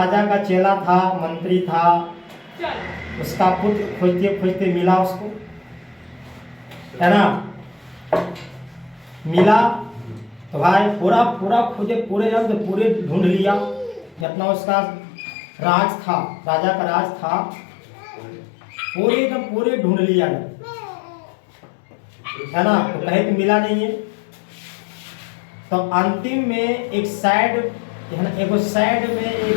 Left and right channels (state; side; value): drops out; right; at 14.2 s